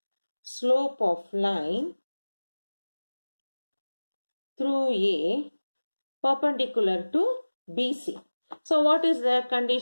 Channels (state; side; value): inverted; both; correlation -1.00